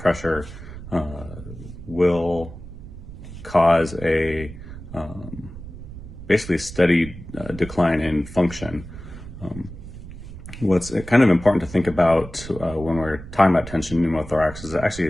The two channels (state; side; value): noise; right; rumble, 13 dB below the sound